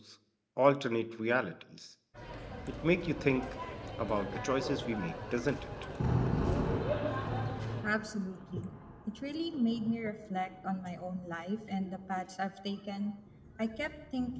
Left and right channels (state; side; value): identical; both; correlation 1.00